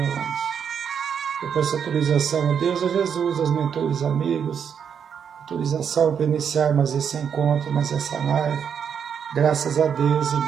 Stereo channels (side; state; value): left; quieter; 7.5 dB